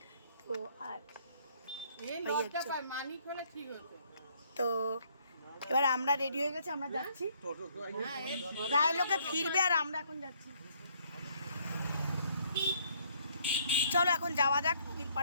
তো আর তো এবার আমরা রেডি হয়ে গেছি, আমরা যাচ্ছি। প্রায় লোকে ফিরবে আর আমরা এখন যাচ্ছি। চলো এখন যাওয়া যাক নদীর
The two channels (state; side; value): inverted; both; correlation -0.65